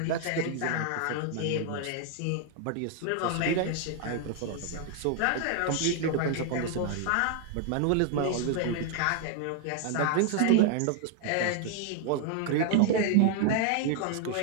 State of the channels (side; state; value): both; different; correlation 0.00